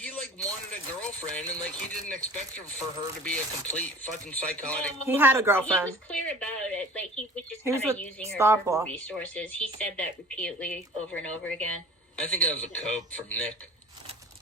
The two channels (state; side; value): normal; both; correlation 0.43